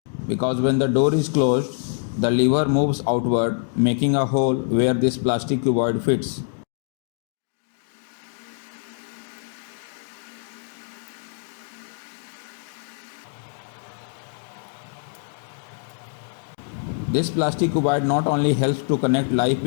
Because when the door is closed, the lever moves outward, making a hole where this plastic cuboid fits. This plastic cuboid not only helps to connect live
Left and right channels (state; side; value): silent; right; 62 dB below the other